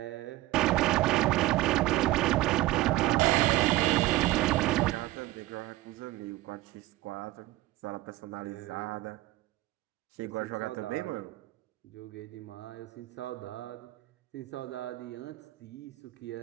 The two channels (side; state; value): left; quieter; 17.4 dB